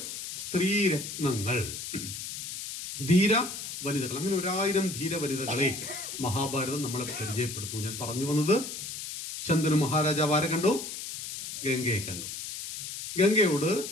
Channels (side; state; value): left; noise; hiss, 7 dB below the sound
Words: സ്ത്രീരത്നങ്ങൾ, ധീര വനിതകൾ. അങ്ങനെ 1000 ധീര വനിതകളെ മഹാഭാരതം നമ്മളെ പരിചയപ്പെടുത്തുന്നു. ഞാൻ പറഞ്ഞു വന്നത്, ശന്തനു മഹാരാജാവ് ആരെ കണ്ടു? ഗംഗയെ കണ്ടു. ഗംഗയോട്